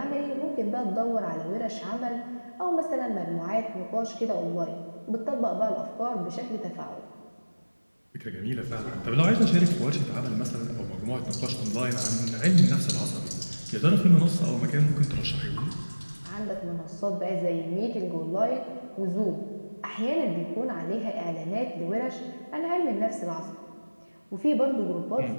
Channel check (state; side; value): inverted; both; correlation -1.00